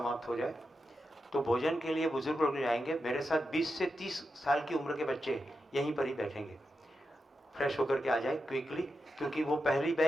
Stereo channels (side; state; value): both; normal; correlation 0.88